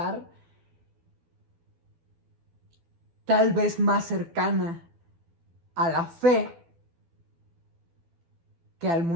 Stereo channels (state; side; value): late; left; 12 ms